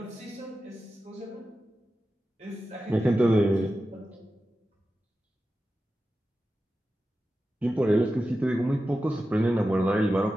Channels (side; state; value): both; normal; correlation 0.92